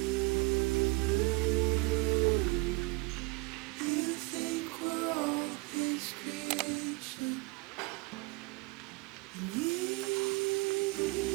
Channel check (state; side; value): quieter; left; 26.7 dB